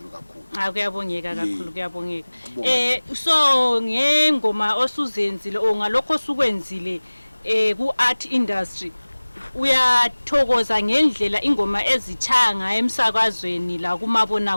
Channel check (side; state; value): both; inverted; correlation -1.00